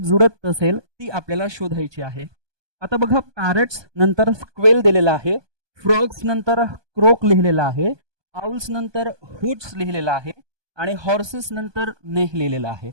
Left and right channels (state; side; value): late; left; 1.2 ms